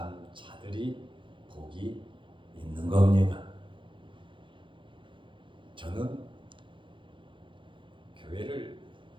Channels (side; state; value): left; late; 0.24 ms